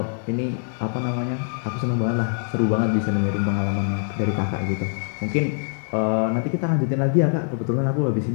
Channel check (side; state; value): right; silent; 63 dB below the other